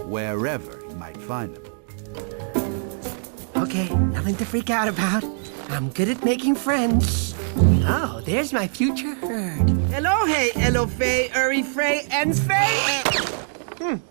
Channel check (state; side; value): silent; left; digital silence